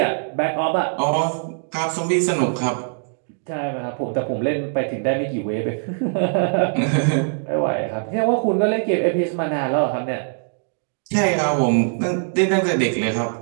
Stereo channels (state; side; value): silent; left; digital silence